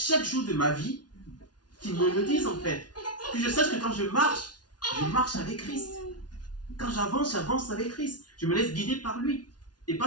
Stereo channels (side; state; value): right; late; 0.69 ms